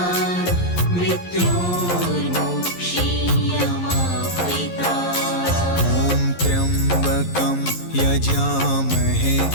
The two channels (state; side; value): late; right; 11 ms